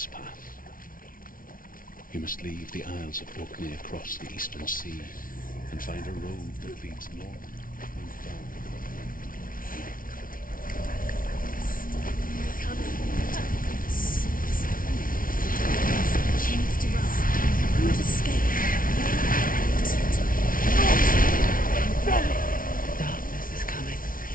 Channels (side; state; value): right; late; 0.40 ms